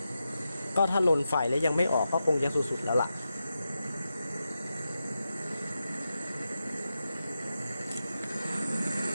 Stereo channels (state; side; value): inverted; both; correlation -0.89